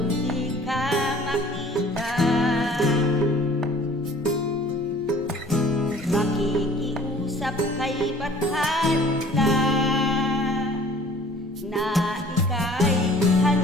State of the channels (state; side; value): noise; right; rumble, 24 dB below the sound